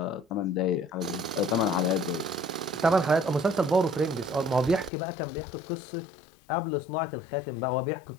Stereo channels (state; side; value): drops out; right; at 4.9 s